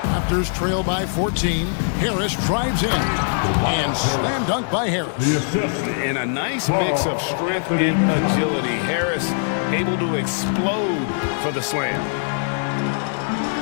Raptors trail by 14. Harris drives in. And slam dunk by Harris. And a nice mix of strength and agility. Harris able to explode for the slam.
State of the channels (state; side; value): silent; right; digital silence